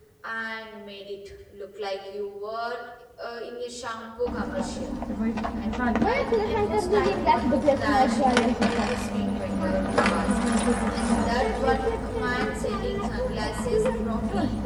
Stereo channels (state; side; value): identical; both; correlation 1.00